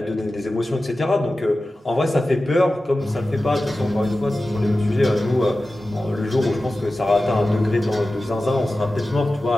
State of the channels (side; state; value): both; normal; correlation 0.95